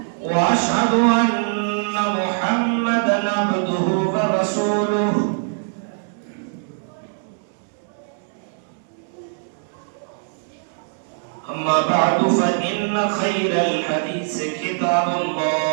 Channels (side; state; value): left; silent; digital silence